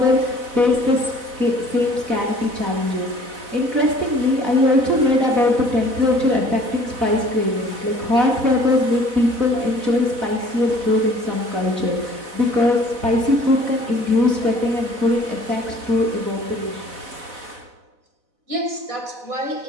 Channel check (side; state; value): left; late; 4.0 ms